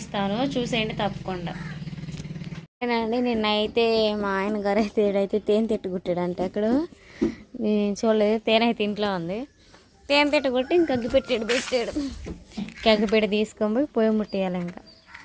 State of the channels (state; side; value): identical; both; correlation 1.00